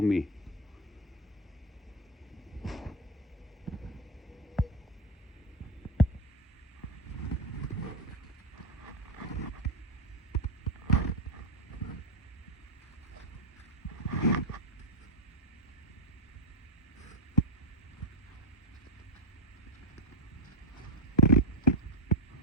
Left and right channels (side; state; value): both; normal; correlation 0.04